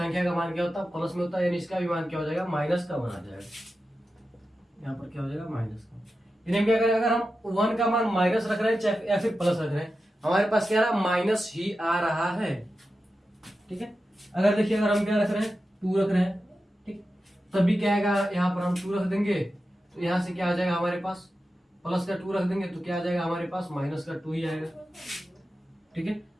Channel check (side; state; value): both; normal; correlation 0.91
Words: का मान क्या होता है, प्लस में होता है, यानी इसका भी मान क्या हो जाएगा, माइनस का 1 आ जाएगा। यहाँ पर क्या हो जाएगा, माइनस का। यानी क्या करें, अगर हम 1 का मान माइनस रख रहे हैं चाहे या फिर प्लस रख रहे हैं, हमारे पास क्या रहा, माइनस ही आ रहा है, ठीक है। अगर देखिए अगर हम क्या रख रहे हैं, 2 रख रहे हैं, ठीक, तभी क्या आएगा, यहाँ पर हम 2 रख देंगे तो यहाँ से क्या आ जाएगा हमारे पास, प्लस का 2 रख देंगे तो क्या आ जाएगा हमारे पास, माइनस का 2 ही आएगा, ठीक है।